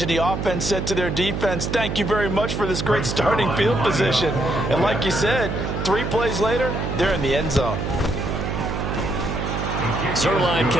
the offense said to their defense, thank you very much for this great starting field position. And like you said, 3 plays later, they're in the end zone. Zuerlein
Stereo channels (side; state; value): right; noise; hum, 3 dB below the sound